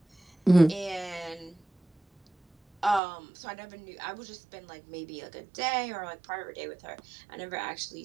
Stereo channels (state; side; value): drops out; left; at 3.0 s